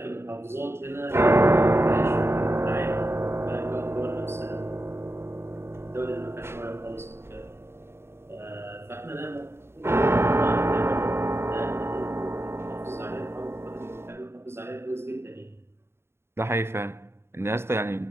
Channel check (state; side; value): late; left; 0.12 ms